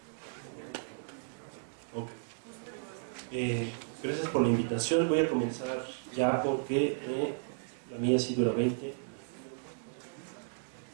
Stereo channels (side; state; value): left; silent; digital silence